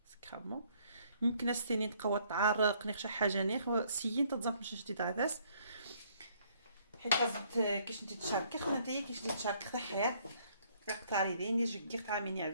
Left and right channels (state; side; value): inverted; both; correlation -0.65